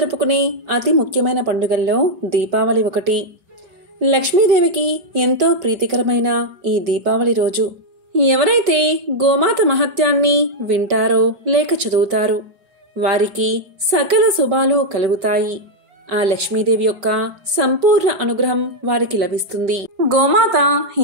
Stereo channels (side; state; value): left; late; 5.2 ms